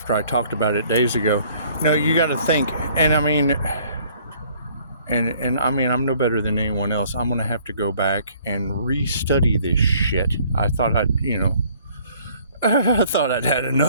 I talked about it days ago. You got to think, and I mean, I'm no better than anyone else. I'm going to have to go back and re-study this shit. I thought I thought I'd had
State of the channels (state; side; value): inverted; both; correlation -0.58